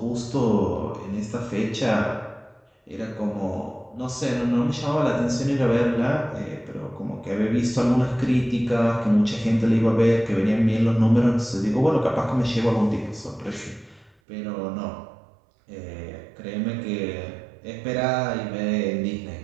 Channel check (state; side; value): drops out; left; at 14.1 s